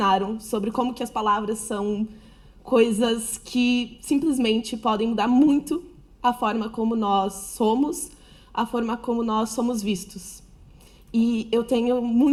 sobre como que as palavras são coisas que simplesmente podem mudar muito a forma como nós somos, a forma como nós somos vistos. E eu tenho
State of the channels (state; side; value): identical; both; correlation 1.00